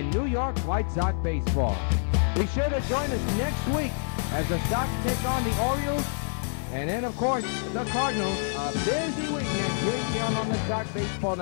New York White Sox Baseball. Be sure to join us next week as the Sox take on the Orioles, and then, of course, the Cardinals. A busy weekend here on the Sox Baseball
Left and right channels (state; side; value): silent; right; digital silence